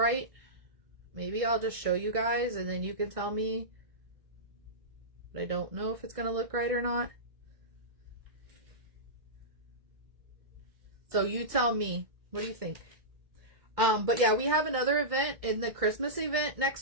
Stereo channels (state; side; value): late; left; 1.7 ms